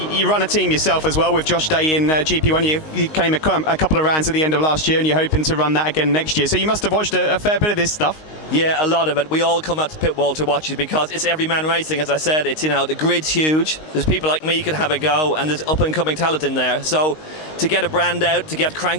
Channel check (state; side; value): late; right; 19 ms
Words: you run a team yourself as well with Josh Day in GP1. You came a couple of rounds at the end of last year, and you're hoping to run that again next year. So you must have watched a fair bit of this stuff. Yeah, a lot of it. We all come out to pit wall to watch it because it's every man racing. As I said, it's, you know, the grid's huge. There's people like me who can have a go, and there's up and coming talent in there. So to get a brand out, to get